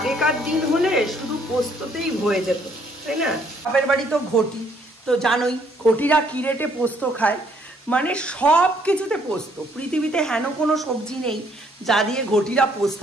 দিন হলে শুধু পোস্ততেই হয়ে যেত, তাই না? বাপের বাড়ি তো ঘটি, তো তো জানোই ঘটিরা কি রেটে পোস্ত খায়, মানে সব কিছুতে পোস্ত। পৃথিবীতে হেন কোনো সবজি নেই যা দিয়ে ঘটিরা পোস্ত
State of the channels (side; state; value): both; normal; correlation 0.66